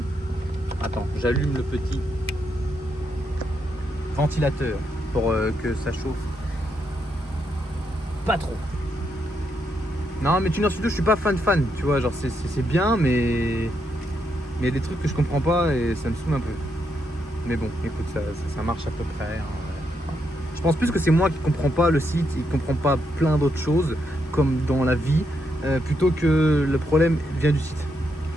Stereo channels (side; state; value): both; normal; correlation 0.79